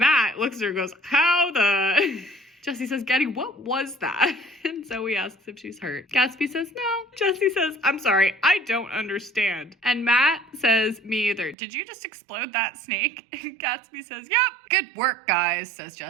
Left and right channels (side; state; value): left; drops out; at 11.6 s